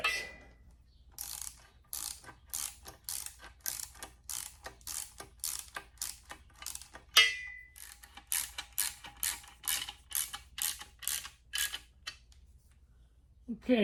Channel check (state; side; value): identical; both; correlation 1.00